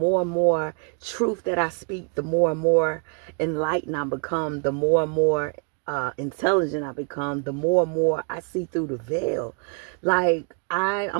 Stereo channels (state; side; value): quieter; left; 38.2 dB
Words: and more truth that I speak, the more and more enlightened I become, the more and more intelligent I become, the more and more I see through the veil. Like